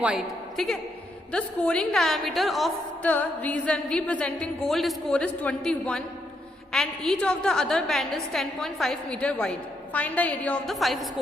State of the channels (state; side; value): normal; both; correlation 0.78